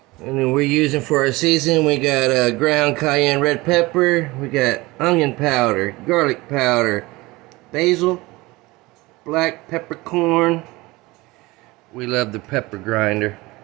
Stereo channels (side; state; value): left; quieter; 21.5 dB